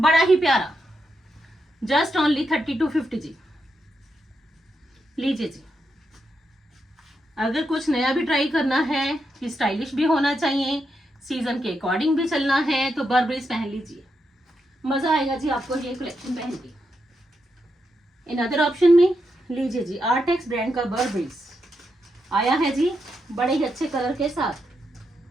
ही प्यारा। जस्ट ओनली 3250 जी। लीजिए जी, अगर कुछ नया भी ट्राई करना है कि स्टाइलिश भी होना चाहिए, सीजन के अकॉर्डिंग भी चलना है, तो बर्बरीज पहन लीजिए, मजा आएगा जी आपको ये कलेक्शन पहन के। अनदर ऑप्शन में लीजिए जी, आर्टेक्स ब्रांड का बर्बरीज आया है जी बड़े ही अच्छे कलर के साथ।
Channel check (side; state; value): both; normal; correlation 0.84